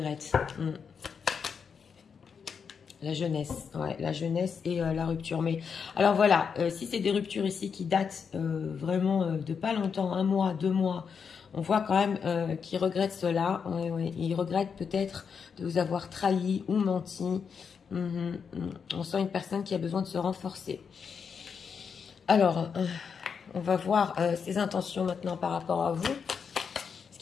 La jeunesse, ouais, la jeunesse et la rupture. Mais alors voilà, si c'est des ruptures ici qui datent vraiment de pas longtemps, 1 mois, 2 mois, on voit quand même qu'il regrette cela. Ouais, ouais. Il regrette peut-être de vous avoir trahi ou menti. On sent une personne qui a besoin de se renforcer. Alors, on va voir ses intentions maintenant par rapport à vous. Parce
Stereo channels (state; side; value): quieter; right; 6.3 dB